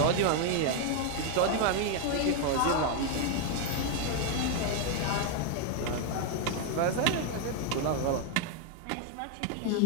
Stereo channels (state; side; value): different; both; correlation 0.01